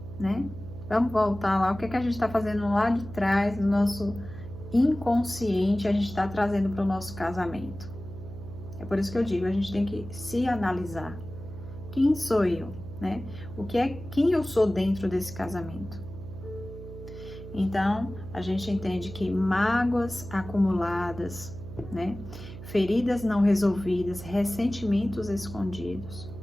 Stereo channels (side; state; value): right; noise; hum, 13 dB below the sound